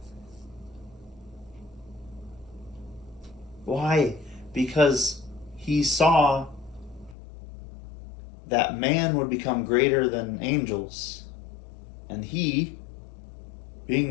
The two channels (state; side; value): drops out; right; at 7.2 s